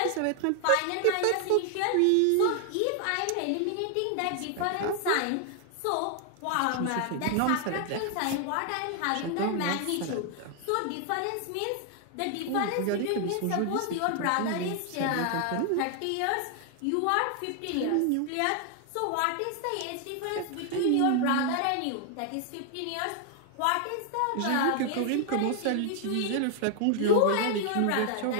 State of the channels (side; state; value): both; different; correlation 0.00